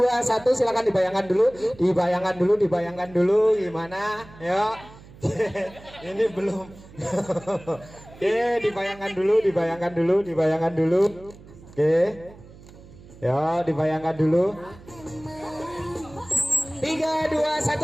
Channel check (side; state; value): right; noise; hum, 20 dB below the sound